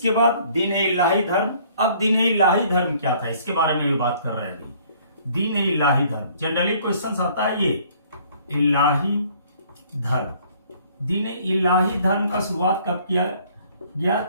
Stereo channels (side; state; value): both; inverted; correlation -0.58